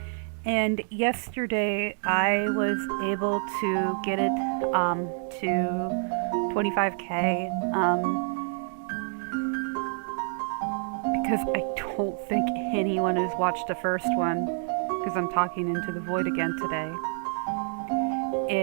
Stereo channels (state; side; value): silent; left; 60 dB below the other